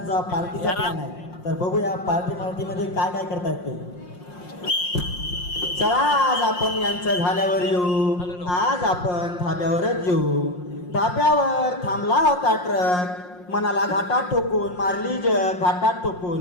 पार्टीचा प्लॅन आहे, तर बघूया पार्टीमध्ये काय काय करतायत ते. चला आज आपण यांचं झाल्यावर येऊ. आज आपण धाब्यावरच येऊ. धाब्यावर थांबला होता ट्रक, मनाला घाटात ठोकून मारली जग, घाटात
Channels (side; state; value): right; late; 5.6 ms